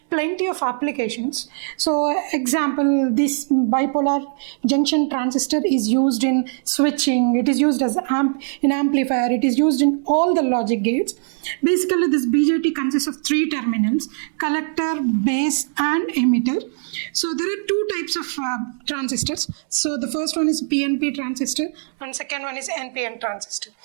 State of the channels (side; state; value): left; silent; 65 dB below the other